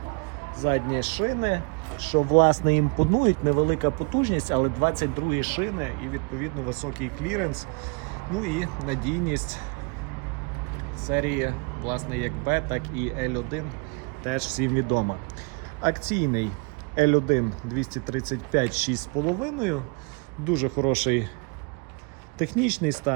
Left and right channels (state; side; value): quieter; left; 33.6 dB